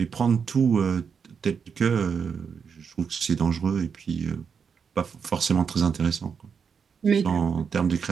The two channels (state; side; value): quieter; left; 6.4 dB